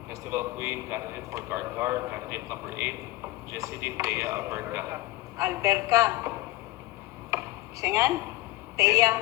Festival Queen, candidate for Karkar, candidate number 8, Jessidine Thea Alberca. Alberca. Singan? Thea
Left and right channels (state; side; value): quieter; right; 18.7 dB